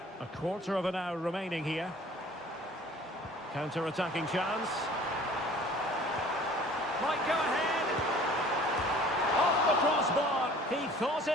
A quarter of an hour remaining here. Counter-attacking chance. Might go ahead. Off the crossbar. He thought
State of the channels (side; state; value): both; normal; correlation 0.49